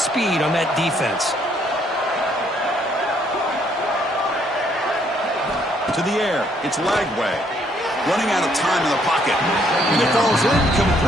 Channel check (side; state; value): both; normal; correlation 0.68